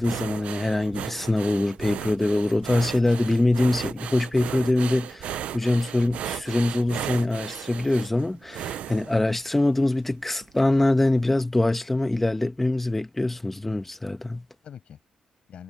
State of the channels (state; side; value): normal; both; correlation 0.97